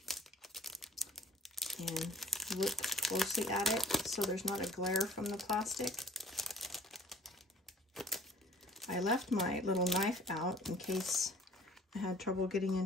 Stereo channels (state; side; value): normal; both; correlation 0.52